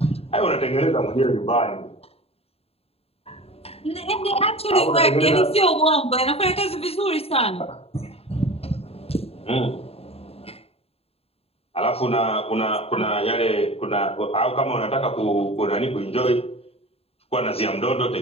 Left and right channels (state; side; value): late; right; 0.29 ms